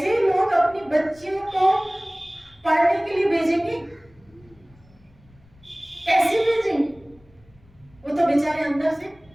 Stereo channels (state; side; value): noise; left; rumble, 29 dB below the sound